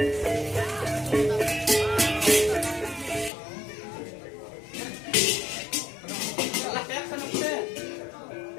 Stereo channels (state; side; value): drops out; right; at 3.3 s